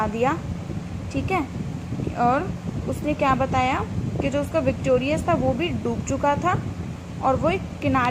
दिया, ठीक है। और उसने क्या बताया कि जो उसका विक्टोरियस था वो भी डूब चुका था और वो एक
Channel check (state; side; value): identical; both; correlation 1.00